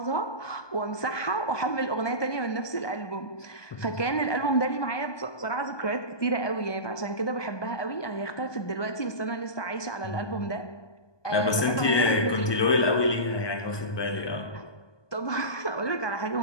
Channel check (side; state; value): right; late; 1.2 ms